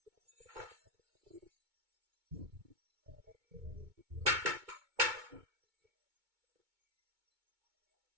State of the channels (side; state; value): left; late; 2.2 ms